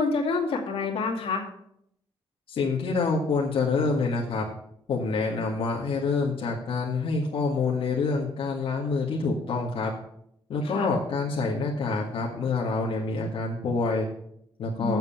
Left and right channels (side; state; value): right; quieter; 3.6 dB